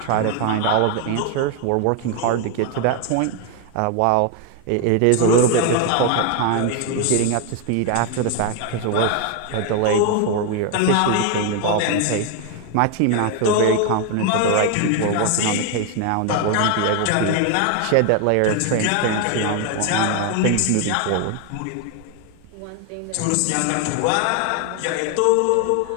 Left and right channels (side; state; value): both; different; correlation 0.01